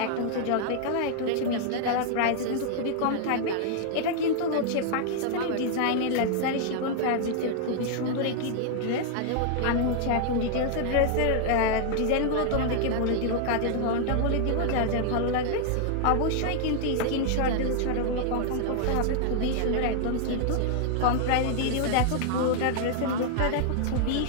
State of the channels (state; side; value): different; both; correlation -0.01